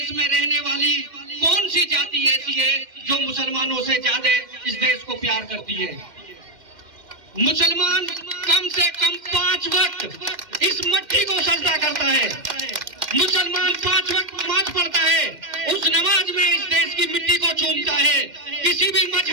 में रहने वाली कौन सी जाति ऐसी है जो मुसलमानों से ज्यादा इस देश को प्यार करती है। मुसलमान कम से कम 5 वक्त इस मट्टी को सजदा करता है। मुसलमान 5 वक्त नमाज पढ़ता है, उस नमाज में इस देश की मिट्टी को चूमता है। किसी भी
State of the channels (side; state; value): left; late; 2.1 ms